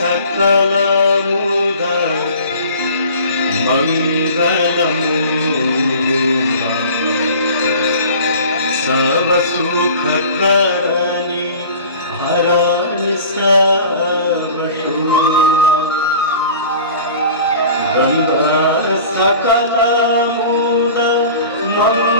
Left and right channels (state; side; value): inverted; both; correlation -0.42